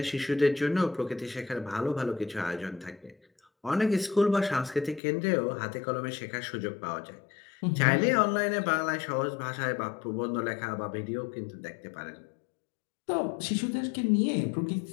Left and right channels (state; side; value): drops out; right; at 5.0 s